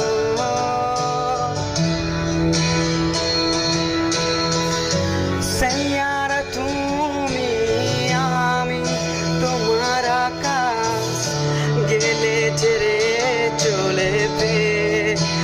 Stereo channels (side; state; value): both; identical; correlation 1.00